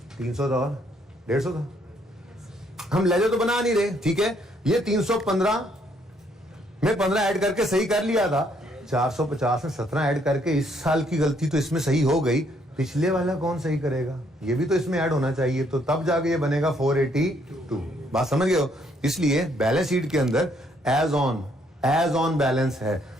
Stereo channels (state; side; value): normal; both; correlation 0.69